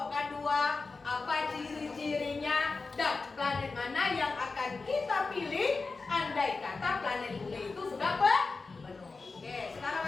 dua, apa ciri-cirinya, dan planet mana yang akan kita pilih andai kata planet bumi itu sudah penuh. Oke,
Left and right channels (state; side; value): quieter; right; 4.0 dB